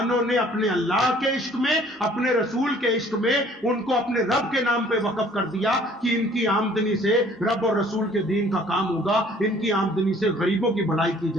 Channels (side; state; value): both; normal; correlation 0.56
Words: نے اپنے اللہ کے عشق میں, اپنے رسول کے عشق میں ان کو اپنے رب کے نام پہ وقف کر دیا کہ ان کی آمدنی سے رب اور رسول کے دین کا کام ہوگا, ان کی آمدنی سے غریبوں کی بھلائی کی